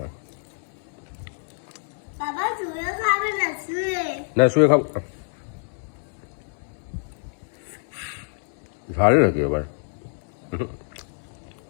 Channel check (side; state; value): right; silent; 61 dB below the other